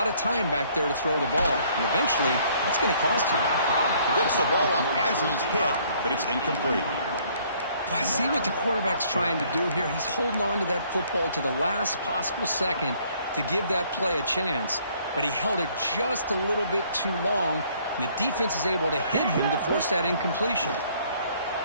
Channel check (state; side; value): inverted; both; correlation -0.62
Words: of time back there to throw the ball. And eventually, that's going to cost you. Gets the ball off as he's hit, but it's incomplete. Well, I see what the quarterback's trying to do here. He's holding on to that football to the last possible second to give that play a chance. But he held it just a little bit too long. And the defense is able to hit him to force that incompletion.